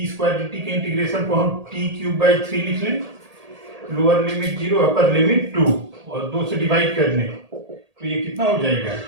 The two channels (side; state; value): left; late; 1.8 ms